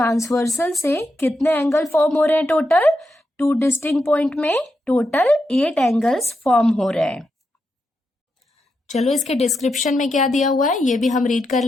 से कितने एंगल फॉर्म हो रहे हैं टोटल, 2 डिस्टिंक्ट पॉइंट में टोटल 8 एंगल्स फॉर्म हो रहे हैं। चलो इसके डिस्क्रिप्शन में क्या दिया हुआ है ये भी हम रीड कर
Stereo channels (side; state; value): both; normal; correlation 0.85